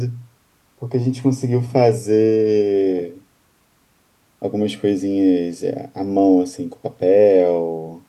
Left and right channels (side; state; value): both; identical; correlation 1.00